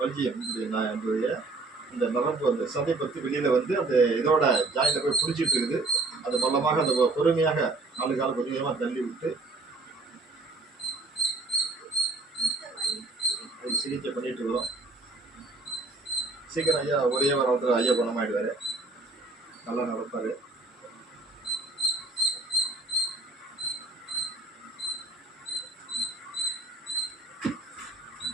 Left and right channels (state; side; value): quieter; left; 3.3 dB